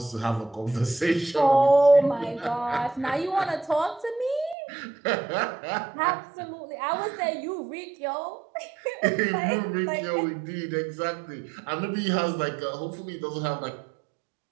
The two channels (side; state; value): left; drops out; at 4.5 s